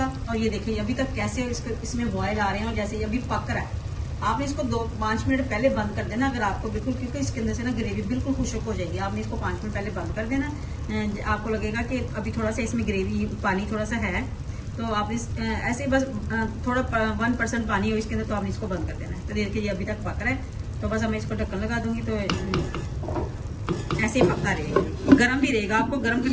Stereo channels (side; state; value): both; identical; correlation 1.00